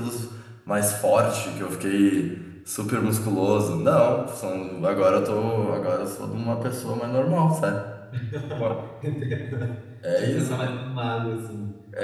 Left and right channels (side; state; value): both; identical; correlation 1.00